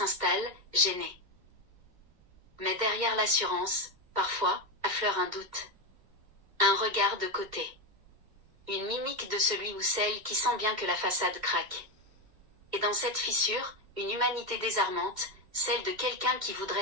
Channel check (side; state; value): left; late; 2.1 ms